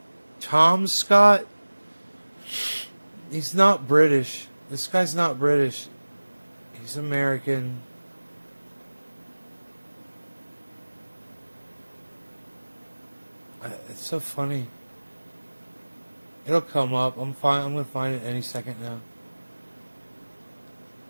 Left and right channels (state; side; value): inverted; both; correlation -1.00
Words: Tom Scott? He's not British. This guy's not British. He's American. It's so funny. It'll come up. I'm gonna find it any second now.